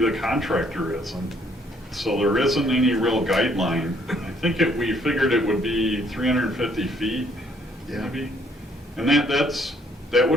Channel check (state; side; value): normal; both; correlation 0.66